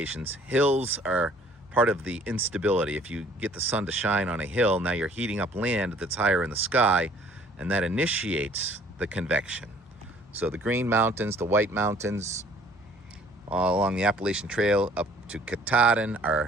hills are part of the instability. If you get the sun to shine on a hill, now you're heating up land that's higher in the sky, and that initiates the convection. So the Green Mountains, the White Mountains, all along the Appalachian Trail up to Katahdin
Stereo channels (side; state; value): both; normal; correlation 0.56